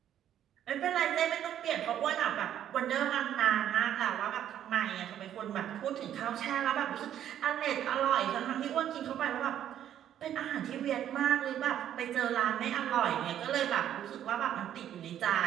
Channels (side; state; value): left; quieter; 10.6 dB